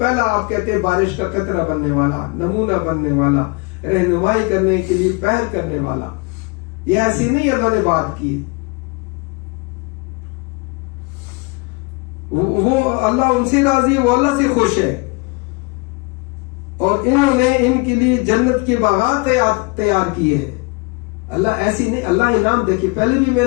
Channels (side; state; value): right; quieter; 28.5 dB